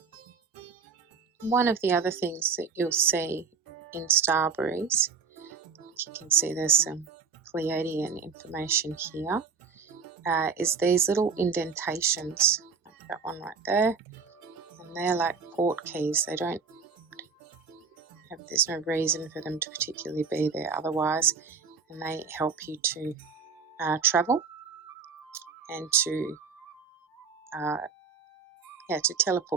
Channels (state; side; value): quieter; left; 5.7 dB